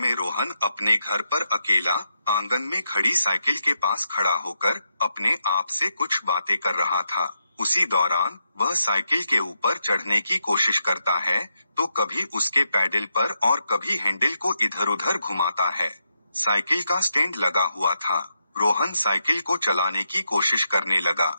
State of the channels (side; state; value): both; inverted; correlation -0.83